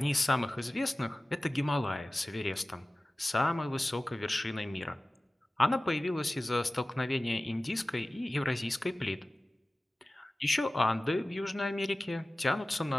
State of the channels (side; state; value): both; normal; correlation 0.97